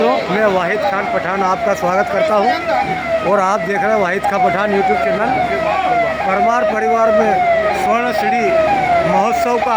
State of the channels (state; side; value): identical; both; correlation 1.00